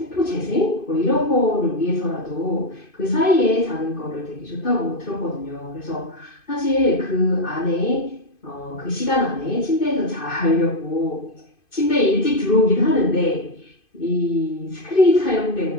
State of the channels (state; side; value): late; right; 2.5 ms